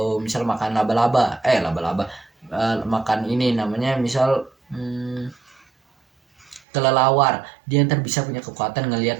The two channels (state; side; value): drops out; left; at 6.6 s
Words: misal makan laba-laba makan ini namanya misal kelelawar, dia ntar bisa punya kekuatan